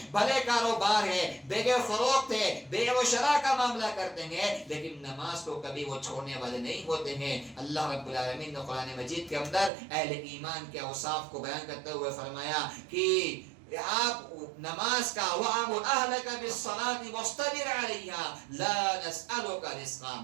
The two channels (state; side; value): drops out; left; at 9.7 s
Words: بھلے کاروبار ہے، بیع فروخت ہے، بیع و شراء کا معاملہ کرتے ہیں، لیکن نماز کو کبھی وہ چھوڑنے والے نہیں ہوتے ہیں. اللہ رب العالمین نے قرآن مجید کے اندر اہل ایمان کے اوصاف کو بیان کرتے ہوئے فرمایا کہ آپ نماز کا وَأَمُرْ أَهْلَكَ بِالصَّلَاةِ وَاصْطَبِرْ عَلَيْهَا لَا نَسْأَلُكَ رِزْقًا.